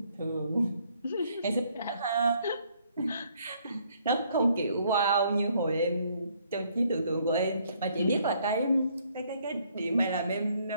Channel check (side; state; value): both; inverted; correlation -0.67